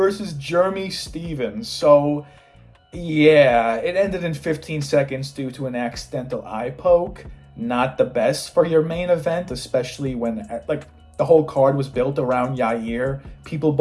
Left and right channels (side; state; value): both; identical; correlation 1.00